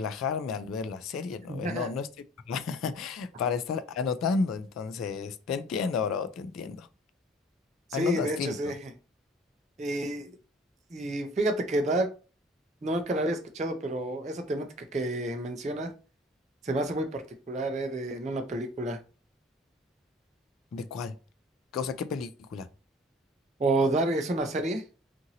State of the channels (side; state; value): both; normal; correlation 0.49